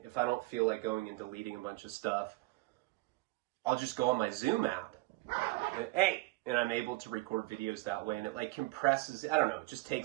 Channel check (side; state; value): left; quieter; 22.4 dB